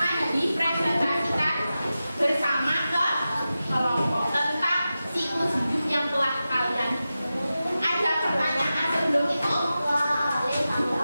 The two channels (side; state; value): both; inverted; correlation -0.93